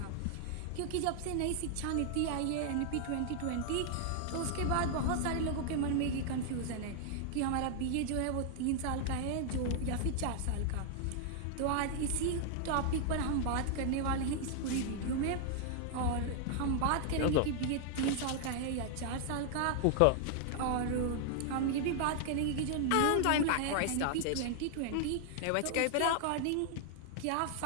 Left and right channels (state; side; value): different; both; correlation 0.00